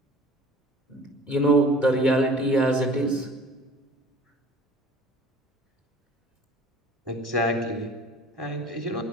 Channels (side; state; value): both; normal; correlation 0.47